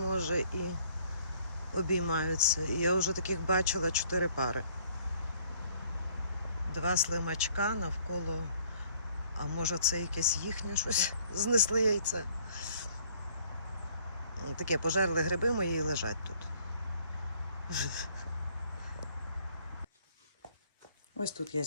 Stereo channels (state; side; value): inverted; both; correlation -0.61